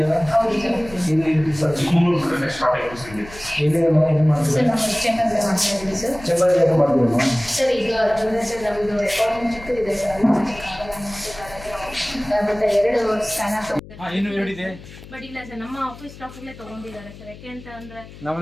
ಇಲ್ಲಿ ಏನು ಮಾಡ್ತೀವಿ? ಚೆಂಬರ್ ಯಾಕೆ ಮಾಡ್ತೀವಿ? ಸರ್ ಈಗ ನಮ್ಮದು ರೆಕಾರ್ಡಿಂಗ್ ಚಿಕ್ಕ ಇದೆ ಸರ್, ಮತ್ತೆ 2 ಸ್ಕ್ಯಾನರ್ ಇನ್ನು ಹೇಳಿದೆ ಬಟ್ ಇಲ್ಲ ಸರ್, ನಮ್ಮ ಆಫೀಸ್ ಸ್ಟಾಫಲ್ಲೇ ತಗೊಂಡಿದ್ದಾರೆ ಸರ್. ಯಾಕೆ ಅಂತ ಅಂದ್ರೆ ನಾವು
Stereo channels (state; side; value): noise; left; hum, 17 dB below the sound